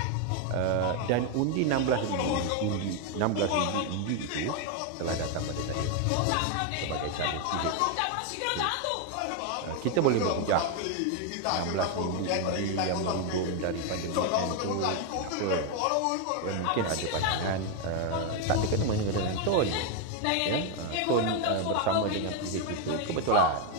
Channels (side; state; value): both; different; correlation 0.01